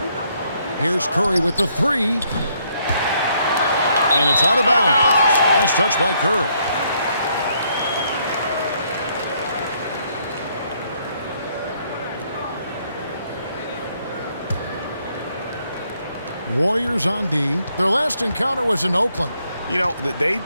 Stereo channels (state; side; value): inverted; both; correlation -0.71